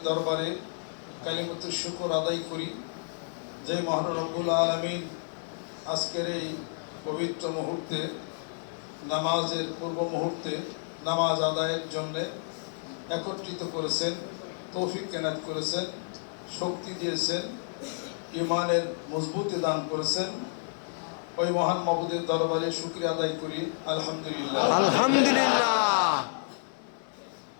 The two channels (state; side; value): silent; right; digital silence